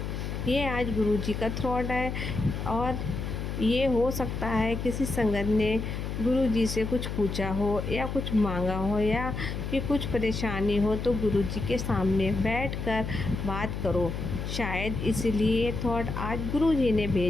ये आज गुरु जी का थॉट है। और ये हो सकता है किसी संगत ने गुरु जी से कुछ पूछा हो या कुछ मांगा हो या कि कुछ परेशानी हो, तो गुरु जी के सामने बैठकर बात करो। शायद इसलिए थॉट आज गुरु जी ने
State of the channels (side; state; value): left; noise; hum, 4 dB below the sound